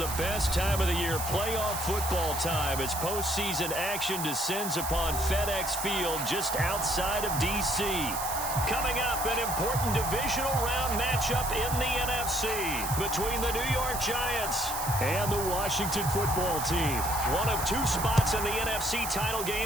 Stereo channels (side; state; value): right; noise; hiss, 5 dB below the sound